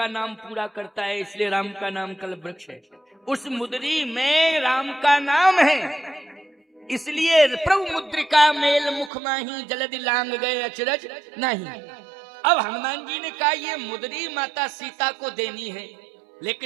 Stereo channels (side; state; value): left; drops out; at 9.1 s